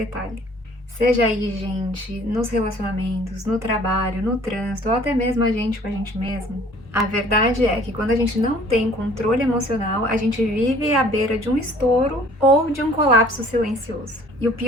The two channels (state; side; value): normal; both; correlation 0.53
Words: Seja aí, gente, nos relacionamentos, no trabalho, no trânsito, ou até mesmo a gente com a gente mesmo. A verdade é que quando a gente não tem controle emocional, a gente vive à beira de um estouro ou de um colapso silencioso. E o